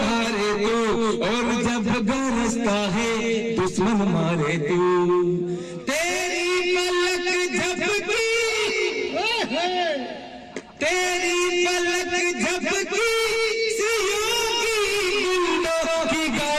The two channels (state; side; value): identical; both; correlation 1.00